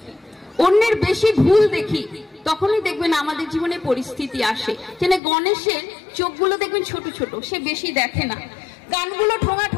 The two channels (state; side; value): drops out; right; at 5.2 s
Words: অন্যের বেশি ভুল দেখি, তখনই দেখবেন আমাদের জীবনে পরিস্থিতি আসে। যেন গণেশের চোখগুলো দেখবেন ছোট ছোট, সে বেশি দেখে না। কানগুলো ঠোঙা